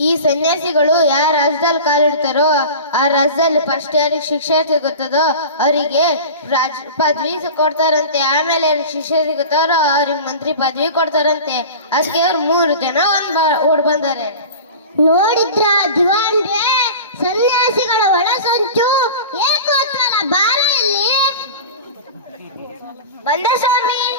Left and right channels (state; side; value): inverted; both; correlation -0.34